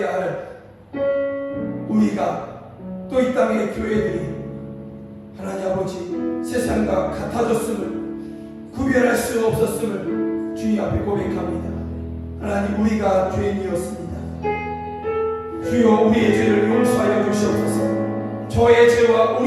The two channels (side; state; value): both; identical; correlation 1.00